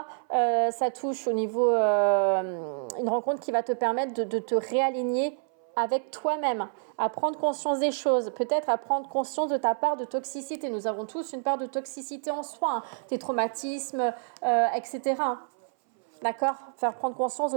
ça touche au niveau, une rencontre qui va te permettre de te réaligner avec toi-même, à prendre conscience des choses, peut-être à prendre conscience de ta part de toxicité. Nous avons tous une part de toxicité en soi, tes traumatismes, etc. D'accord ? Faire prendre conscience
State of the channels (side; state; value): left; silent; 59 dB below the other